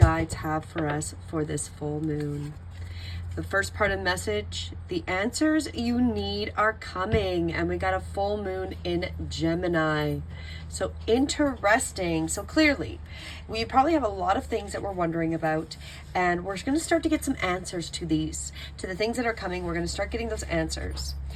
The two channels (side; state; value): both; identical; correlation 1.00